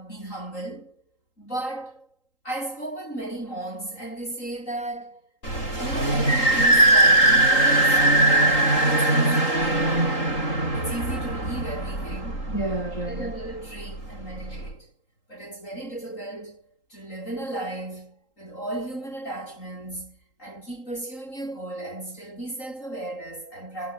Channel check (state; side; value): late; right; 3.8 ms